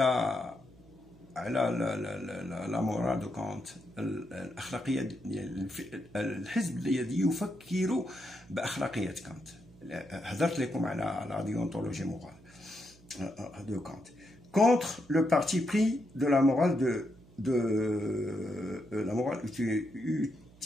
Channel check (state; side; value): noise; right; hum, 24 dB below the sound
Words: على لا مورال دو كونت، الاخلاقيه ديال الحزب الذي يفكر باخلاقيه كانت. هضرت لكم على لا ديونتولوجي مورال de Kant, contre le parti pris de la morale la morale